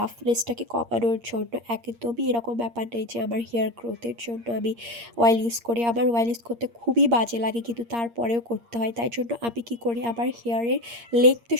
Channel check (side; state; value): left; late; 8.6 ms